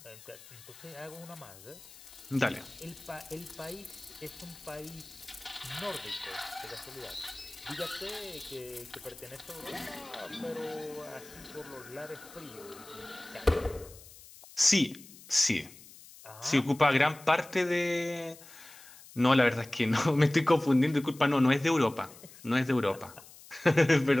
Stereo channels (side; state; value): left; noise; hiss, 20 dB below the sound